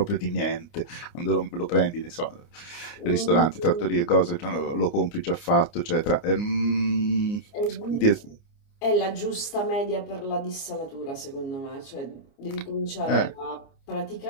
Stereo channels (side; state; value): right; late; 29 ms